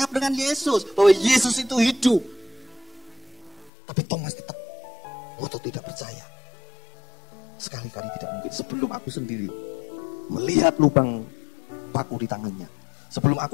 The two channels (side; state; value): right; drops out; at 3.7 s